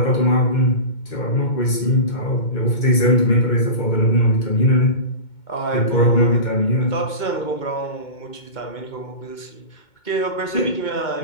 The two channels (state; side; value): late; right; 2.2 ms